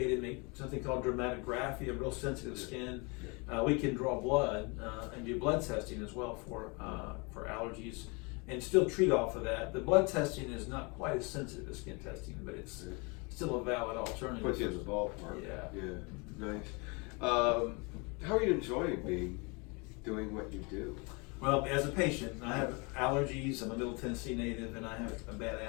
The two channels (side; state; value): right; quieter; 30.1 dB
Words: make something called dermatography, a real sensitive skin. We can draw blood and do blood testing as well for allergies, and still treat off of that. The blood testing is not quite as sensitive as skin testing, but it's still a valid alternative. Puts you in the ballpark. Yeah. Nice. How are you enjoying doing what you do? Well, as a patient, I have allergies. I'm a Middle Tennessee native, and I have a bad